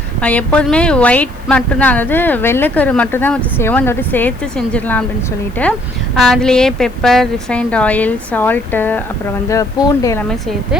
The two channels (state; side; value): noise; left; hiss, 29 dB below the sound